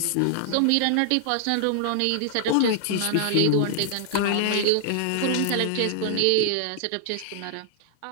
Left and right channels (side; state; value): both; different; correlation 0.00